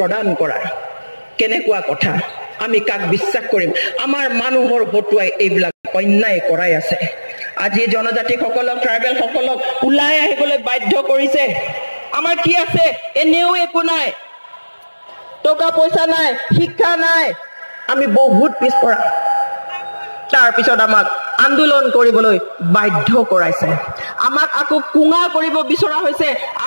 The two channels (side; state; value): both; inverted; correlation -1.00